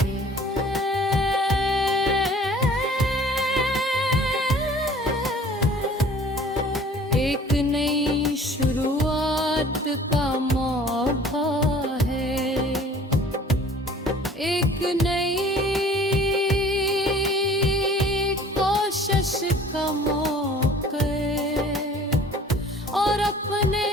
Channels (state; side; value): normal; both; correlation 0.50